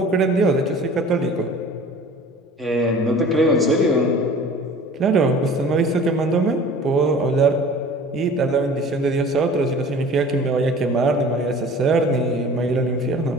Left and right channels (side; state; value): both; normal; correlation 0.44